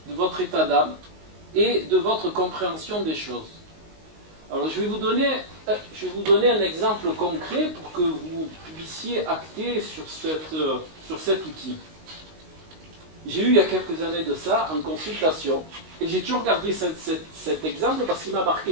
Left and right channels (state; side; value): late; left; 19 ms